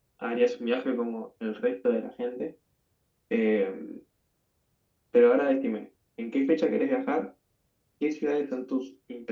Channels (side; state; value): both; identical; correlation 1.00